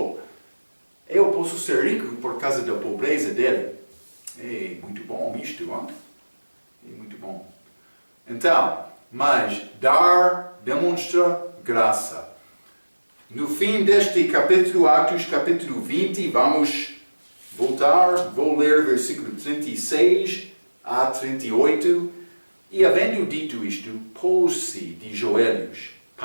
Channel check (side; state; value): both; inverted; correlation -1.00